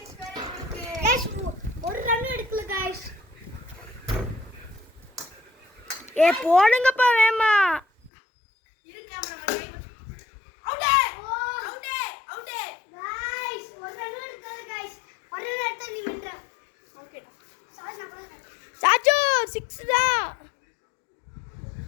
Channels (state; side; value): drops out; right; at 8.1 s